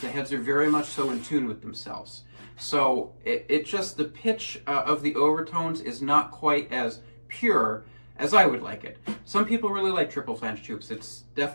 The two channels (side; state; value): both; inverted; correlation -1.00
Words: heads are very much so in tune with themselves. So it just, the pitch of the overtones is not quite as pure as I would like it. Some people really like triple flange tubes. It's